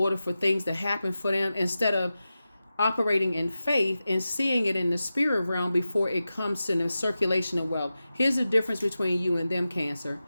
for things to happen for them, instead of operating in faith and seeing it in the spirit realm before it comes to the circulation of wealth. Here's the difference between you and them, Cancer.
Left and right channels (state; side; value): inverted; both; correlation -0.93